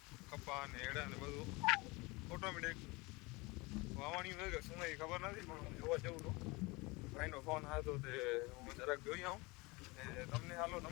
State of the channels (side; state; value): right; quieter; 24.9 dB